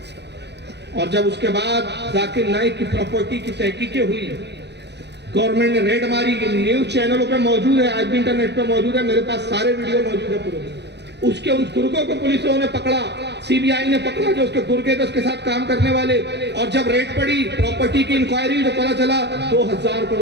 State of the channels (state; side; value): late; left; 0.50 ms